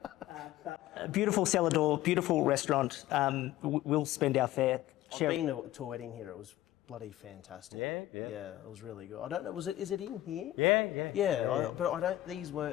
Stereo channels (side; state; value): right; quieter; 15.0 dB